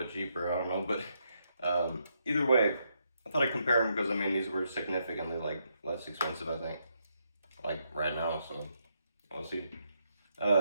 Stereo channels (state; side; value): inverted; both; correlation -0.78